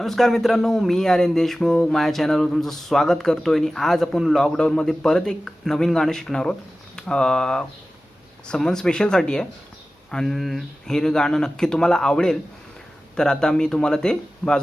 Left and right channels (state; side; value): normal; both; correlation 0.96